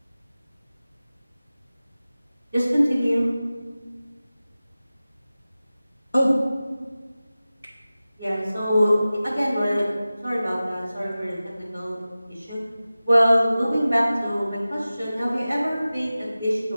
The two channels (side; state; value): both; inverted; correlation -0.96